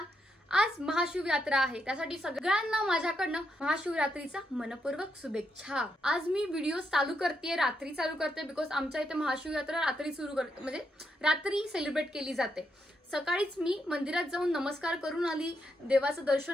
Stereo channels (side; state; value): both; normal; correlation 0.80